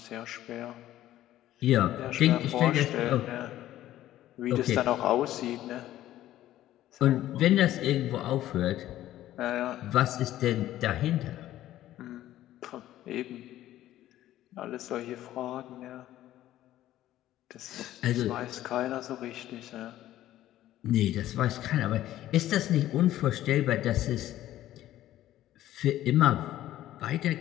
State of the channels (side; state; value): right; quieter; 13.7 dB